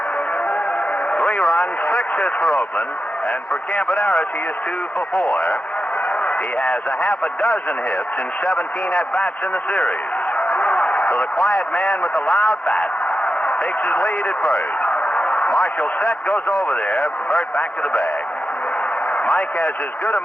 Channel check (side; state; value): both; normal; correlation 0.90